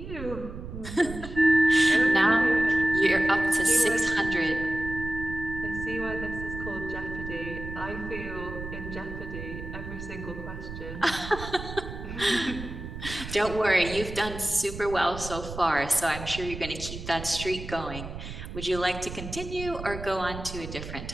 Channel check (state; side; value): noise; right; rumble, 10 dB below the sound